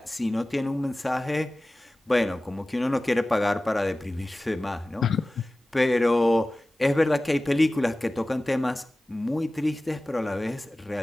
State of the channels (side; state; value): both; normal; correlation 0.97